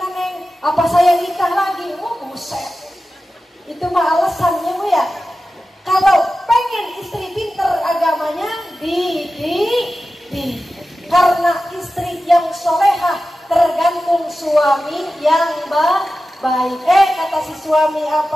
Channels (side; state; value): both; normal; correlation 0.94